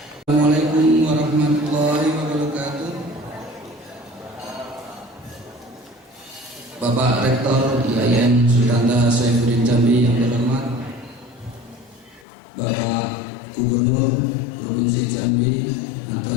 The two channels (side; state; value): right; drops out; at 12.2 s